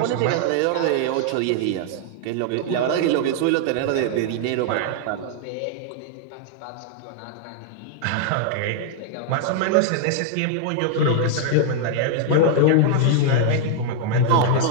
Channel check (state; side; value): different; both; correlation -0.01